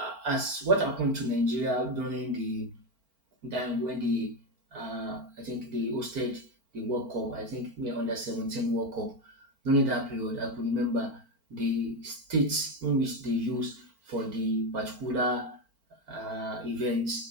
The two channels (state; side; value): late; left; 4.4 ms